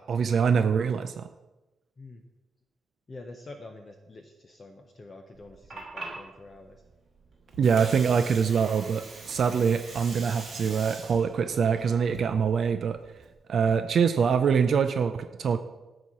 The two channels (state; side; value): quieter; left; 6.1 dB